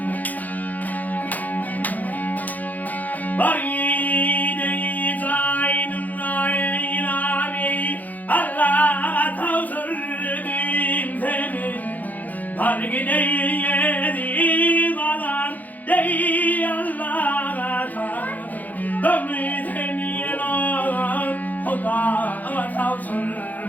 Bari dey zaynım naylani Allah tavsırdım seni Bari dey yedim alan dey Allah'a tavsırdım seni Huda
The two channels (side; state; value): right; late; 0.081 ms